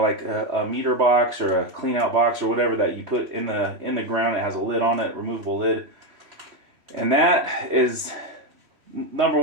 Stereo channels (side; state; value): left; late; 3.1 ms